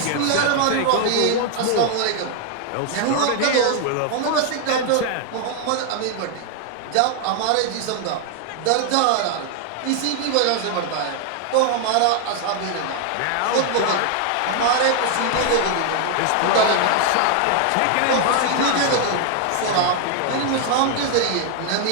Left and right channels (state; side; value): different; both; correlation 0.00